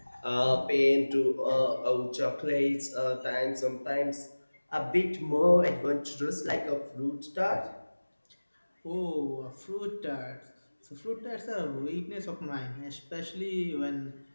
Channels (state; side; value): inverted; both; correlation -1.00